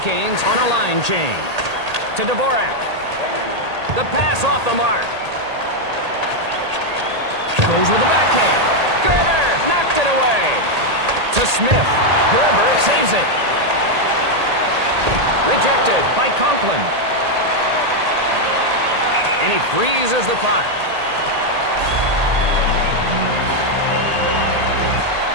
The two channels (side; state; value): left; late; 1.8 ms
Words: on a line change. To Dvorak. The pass off the mark. Goes with the backhand. Gerber knocked it away. To Smith. Gerber saves it. Rejected by Conklin. And he freezes the puck.